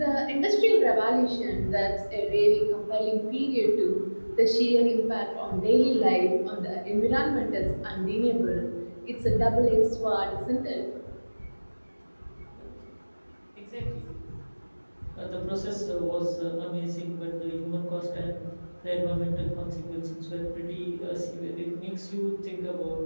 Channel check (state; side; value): inverted; both; correlation -1.00